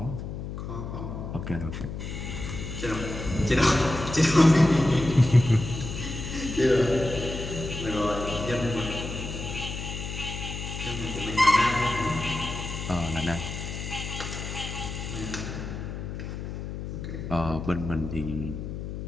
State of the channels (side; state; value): left; noise; hum, 6 dB below the sound